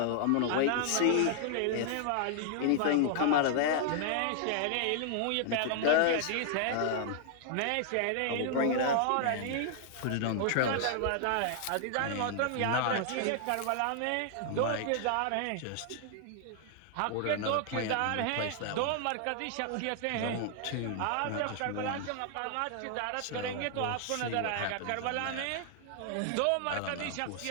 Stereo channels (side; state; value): both; different; correlation -0.01